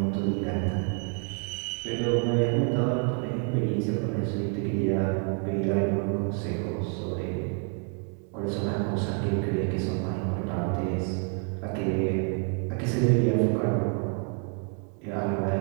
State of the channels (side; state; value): left; quieter; 38.3 dB